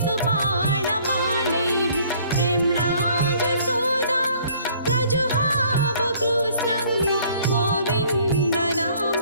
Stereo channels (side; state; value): both; inverted; correlation -0.58